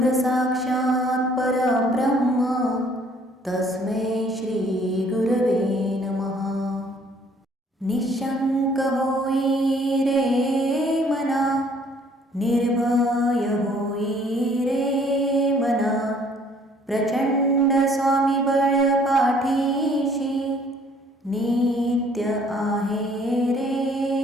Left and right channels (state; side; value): normal; both; correlation 0.60